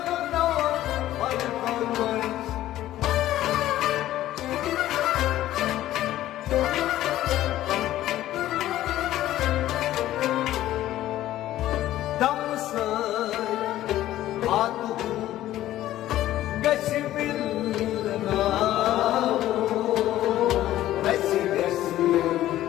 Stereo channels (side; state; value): right; quieter; 13.9 dB